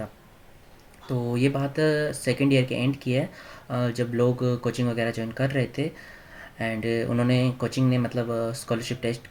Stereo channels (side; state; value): both; identical; correlation 1.00